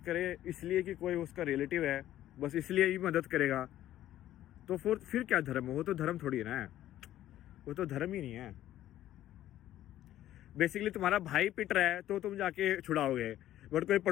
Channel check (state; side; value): quieter; right; 13.1 dB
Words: करे इसलिए कि कोई उसका रिलेटिव है, बस इसलिए ही मदद करेगा, तो फिर क्या धर्म है? वो तो धर्म थोड़ी है ना, वो तो धर्म ही नहीं है। बेसिकली तुम्हारा भाई पिट रहा है तो तुम जाके छुड़ाओगे, बट कोई